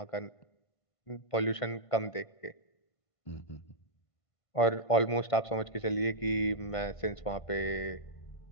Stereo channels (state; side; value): late; right; 1.5 ms